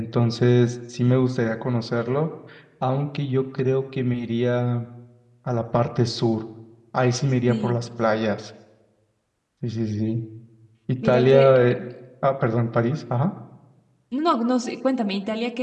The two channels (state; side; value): identical; both; correlation 1.00